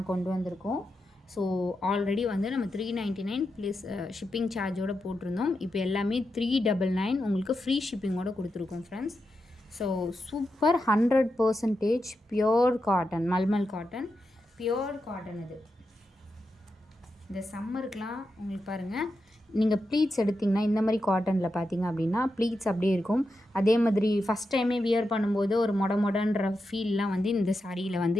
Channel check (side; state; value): both; normal; correlation 0.88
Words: கொண்டு வந்திருக்கோம். ஸோ ஆல்ரெடி வந்து நம்ம 399 ப்ளஸ் ஷிப்பிங் சார்ஜோடு போட்டிருந்தோம். இப்போ எல்லாமே 399 உங்களுக்கு ஃப்ரீ ஷிப்பிங்கோடு கொடுத்துருக்கோம் friends. So super 100% pure cotton, mulmul cotton, pure cotton. இது இந்த சம்மருக்கெலாம் உங்களுக்கு பாருங்கள், நீங்கள் ப்ளீட்ஸ் எடுத்திங்கன்னா இந்த மாதிரி காட்டனில் பார்த்தீங்க அப்படின்னா ப்ளீட்ஸ் அப்படியே இருக்கும். அதே மாதிரி ஃபஸ்ட் டைமே வியர் பண்ணும்போது ஒரு மொடன்ற ஃபீல்லாம் வந்து இந்த சாரியில்